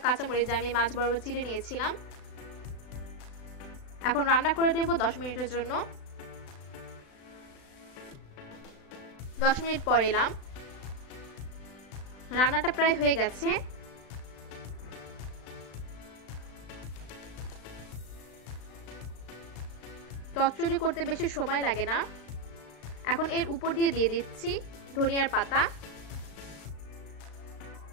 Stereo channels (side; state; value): right; late; 36 ms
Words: কাঁচামরিচ, যা আমি মাছ বরাবর চিড়ে নিয়েছিলাম। এখন রান্না করে দেব 10 মিনিটের জন্য। 10 মিনিট পর এলাম, রান্নাটা প্রায় হয়ে গেছে। চচ্চড়ি করতে বেশি সময় লাগে না। এখন এর উপর দিয়ে দিচ্ছি ধনিয়ার পাতা।